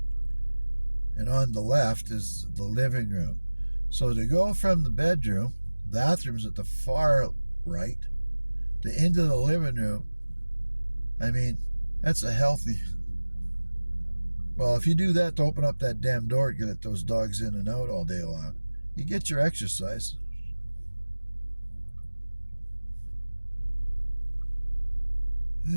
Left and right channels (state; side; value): inverted; both; correlation -1.00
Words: And on the left is the living room. So to go from the bedroom, bathroom's at the far right, to into the living room, I mean, That's a healthy. Well, if you do that to open up that damn door to get those dogs in and out all day long, you get your exercise.